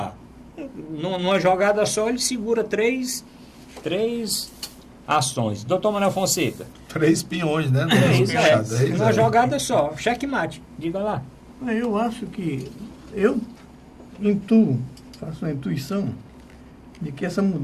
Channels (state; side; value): identical; both; correlation 1.00